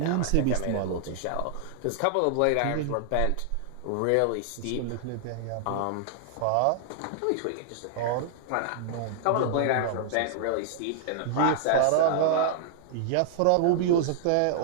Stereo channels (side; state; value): both; different; correlation -0.01